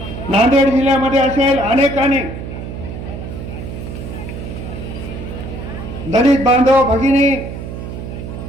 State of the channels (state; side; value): noise; right; hum, 8 dB below the sound